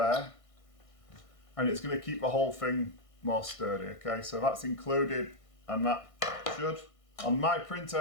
and it's going to keep the whole thing more sturdy. Okay, so that's included, and that should, on my printer,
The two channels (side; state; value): right; late; 1.6 ms